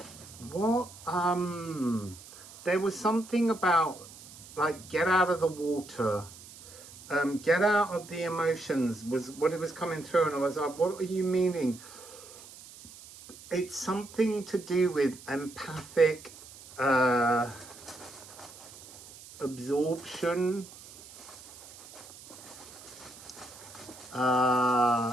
what, there was something about, like, get out of the water, get out of the emotions, was what it was coming through, and I was like, what are you meaning? It's something to do with empathic absorption.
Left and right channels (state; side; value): noise; right; hiss, 18 dB below the sound